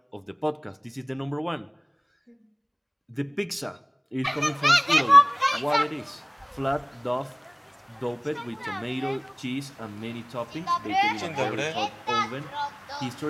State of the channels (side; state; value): both; identical; correlation 1.00